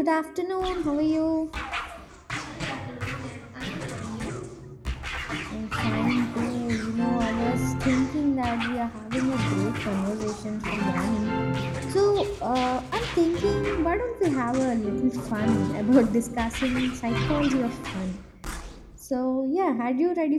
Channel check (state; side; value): identical; both; correlation 1.00